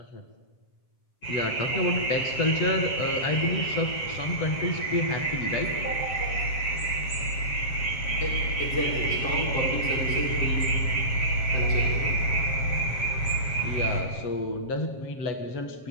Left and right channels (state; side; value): late; right; 7.5 ms